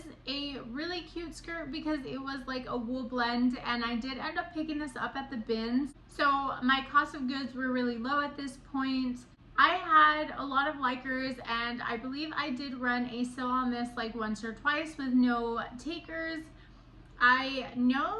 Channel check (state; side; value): identical; both; correlation 1.00